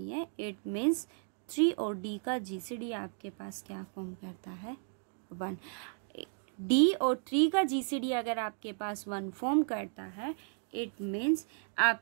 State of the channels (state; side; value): silent; left; 55 dB below the other